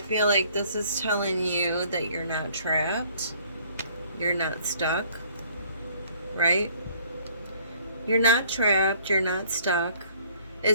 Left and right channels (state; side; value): inverted; both; correlation -0.59